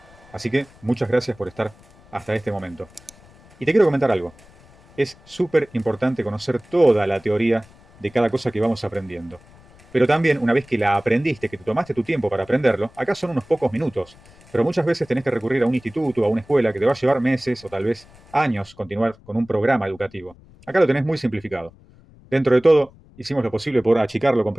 Así que muchas gracias por estar hasta este momento. Y te quiero comentar algo. Es súper importante conocer toda la teoría de cada cosa que vamos aprendiendo. Pero también, una vez que la aprendiste, que te tomaste tu tiempo para aprenderlo, acá son unos pocos minutos. Pero muchas veces tenés que recurrir a un instituto, a una escuela, que te va a llevar meses o tal vez años continuar con un programa educativo. Acá lo tenés muy simplificado. Dentro de todo, hicimos lo posible por achicarlo,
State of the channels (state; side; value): noise; left; rumble, 26 dB below the sound